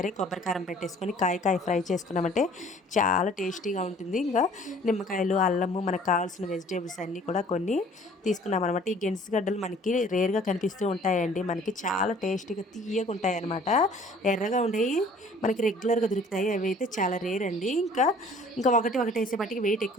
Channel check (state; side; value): normal; both; correlation 0.53